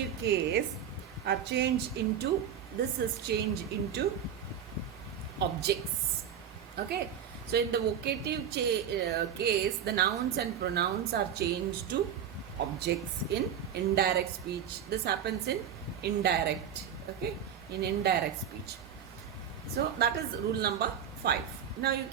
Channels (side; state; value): left; quieter; 8.6 dB